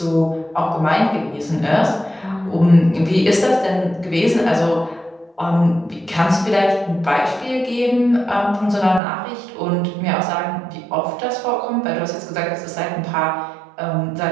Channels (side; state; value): left; drops out; at 9.0 s